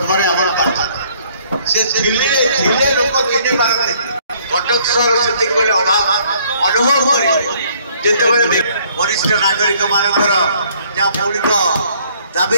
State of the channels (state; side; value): inverted; both; correlation -0.62